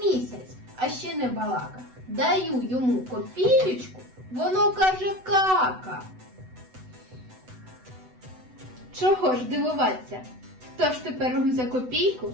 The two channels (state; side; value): late; left; 8.0 ms